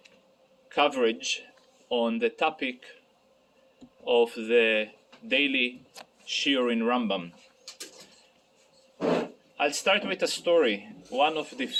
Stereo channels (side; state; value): both; identical; correlation 1.00